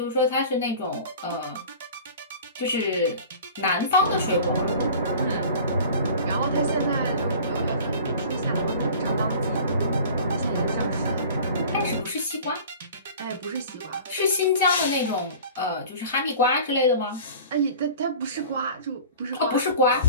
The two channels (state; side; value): inverted; both; correlation -0.42